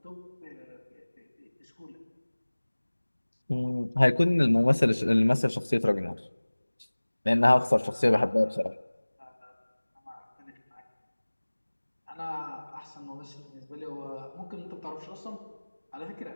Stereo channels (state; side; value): inverted; both; correlation -1.00